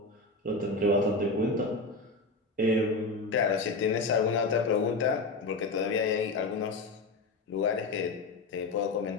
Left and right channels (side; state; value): right; quieter; 3.4 dB